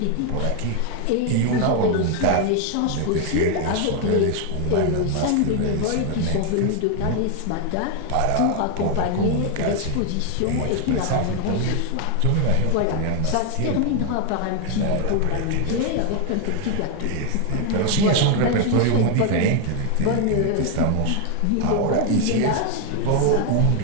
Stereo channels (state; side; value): different; both; correlation 0.01